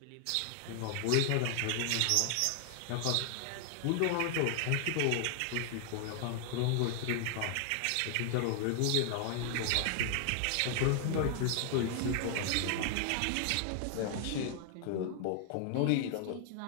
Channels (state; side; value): different; both; correlation 0.00